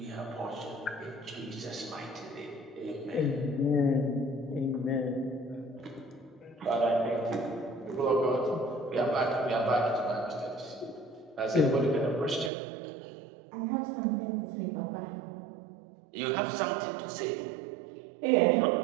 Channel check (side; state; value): left; drops out; at 12.5 s